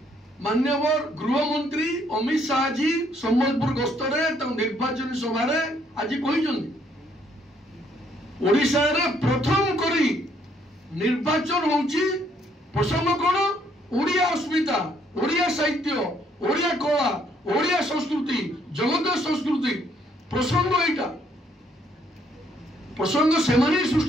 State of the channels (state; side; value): normal; both; correlation 0.68